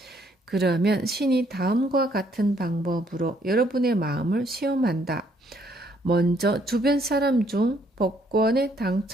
그러면 신이 다음과 같은 방법으로 여러분의 마음을 시험한다. 먼저 주변 사람 중 복권에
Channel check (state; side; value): normal; both; correlation 0.68